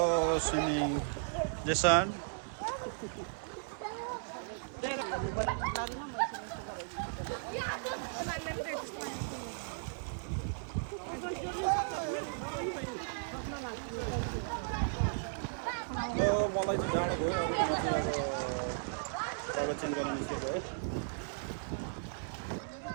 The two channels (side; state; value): left; silent; 54 dB below the other